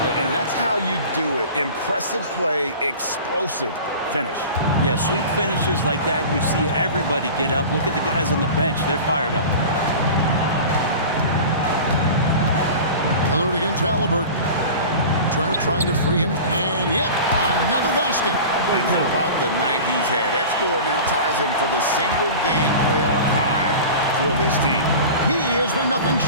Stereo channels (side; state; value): both; inverted; correlation -0.36